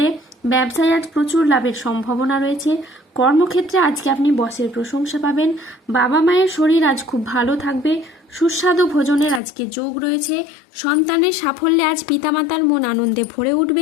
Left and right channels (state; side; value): drops out; right; at 9.4 s